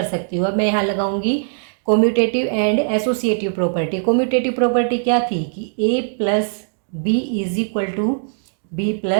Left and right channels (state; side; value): silent; left; digital silence